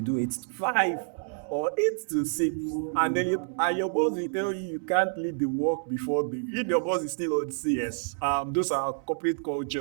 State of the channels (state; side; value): silent; left; 59 dB below the other